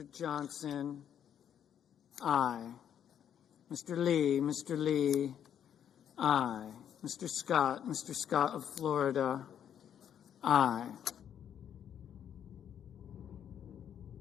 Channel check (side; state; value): right; quieter; 9.2 dB